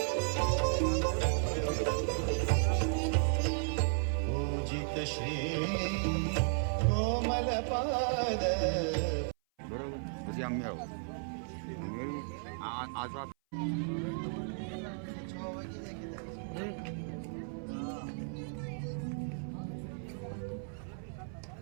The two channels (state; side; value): silent; left; 55 dB below the other